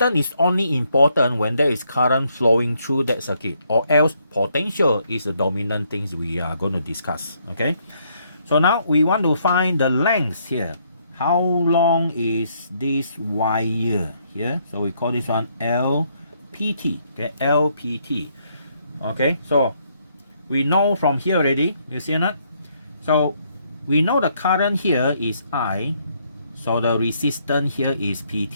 is only important when there is current flowing through that circuit, or else potential is the dominant things we are going to discuss. Okay, so now we want to find the length here. How long is this wire here? So we call this one LPT. Okay, LPT. Okay, so we know from here already, you see or not? So we know the current here is I, so the resistance here is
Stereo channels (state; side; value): inverted; both; correlation -0.72